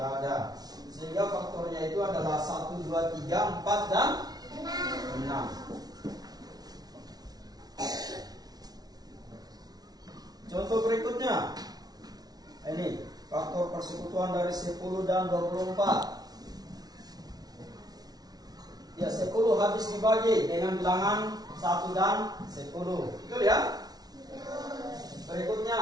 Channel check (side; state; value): left; late; 0.19 ms